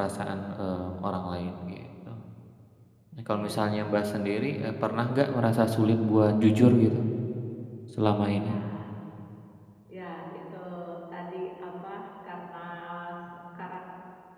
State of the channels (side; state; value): both; identical; correlation 1.00